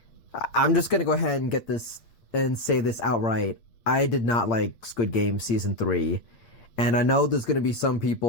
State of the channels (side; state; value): right; late; 8.3 ms